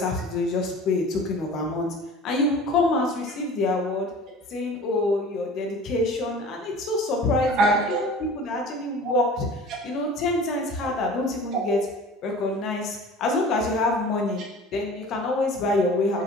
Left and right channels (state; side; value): normal; both; correlation 0.41